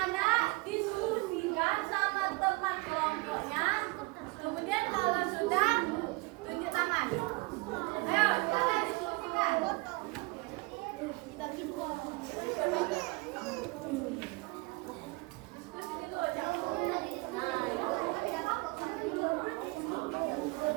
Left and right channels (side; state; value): left; quieter; 25.0 dB